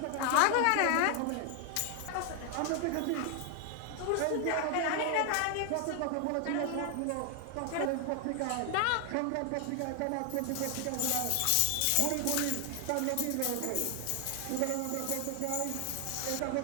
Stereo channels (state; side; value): different; both; correlation 0.00